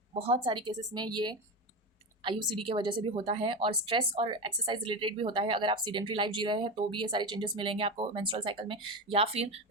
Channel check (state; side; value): normal; both; correlation 0.19